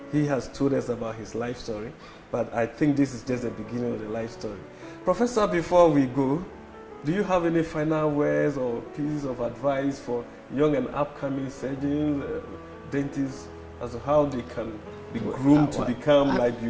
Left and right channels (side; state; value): both; identical; correlation 1.00